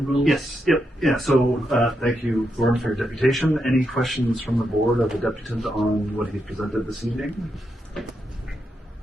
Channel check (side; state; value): both; normal; correlation 0.83